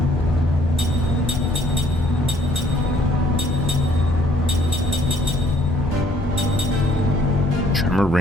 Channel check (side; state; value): both; normal; correlation 0.63